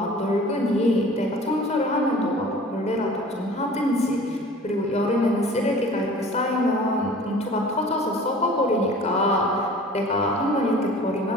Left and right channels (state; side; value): normal; both; correlation 0.45